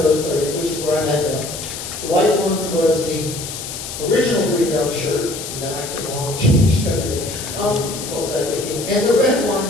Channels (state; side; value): noise; left; hiss, 8 dB below the sound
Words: both played in, which is where I met them. The white one was the original Greenbelt shirt, and then I came along and changed everything. What was I thinking? And the red